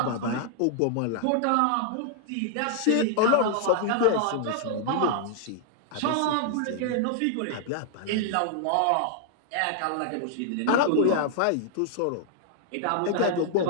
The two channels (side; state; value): both; different; correlation 0.00